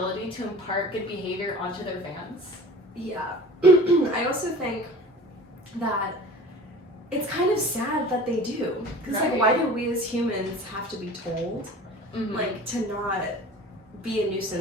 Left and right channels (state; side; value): normal; both; correlation 0.41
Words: to impart good behavior onto their fans? Yeah. I also think that it's kind of sad that they do. Because, like, why do we as humans have to be told, like, to not be a